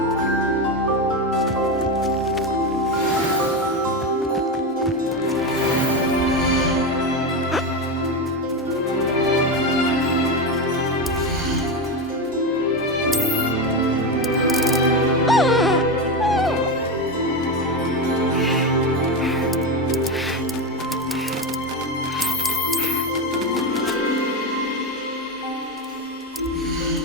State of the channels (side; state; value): both; normal; correlation 0.15